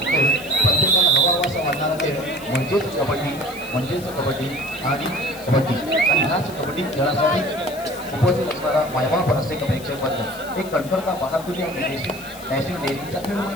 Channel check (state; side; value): noise; left; hiss, 18 dB below the sound